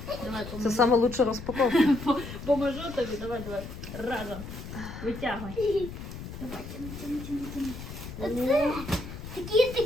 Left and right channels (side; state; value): left; noise; rumble, 10 dB below the sound